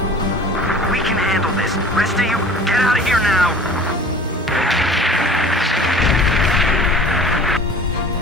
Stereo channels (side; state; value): both; normal; correlation 0.44